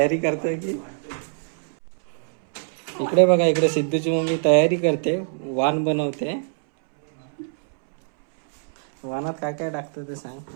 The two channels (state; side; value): silent; left; 63 dB below the other